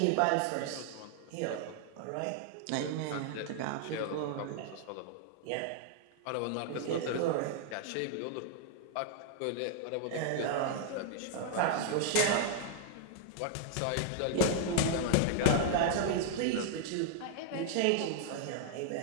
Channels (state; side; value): different; both; correlation 0.00